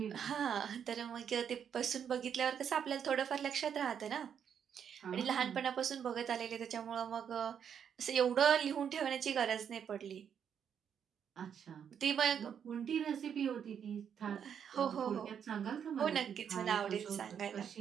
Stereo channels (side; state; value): left; quieter; 8.1 dB